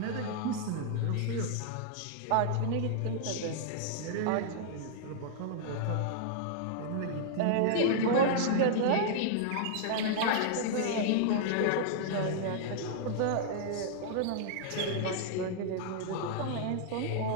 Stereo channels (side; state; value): both; different; correlation -0.01